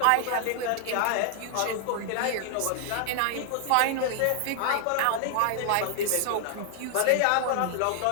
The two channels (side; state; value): both; different; correlation 0.00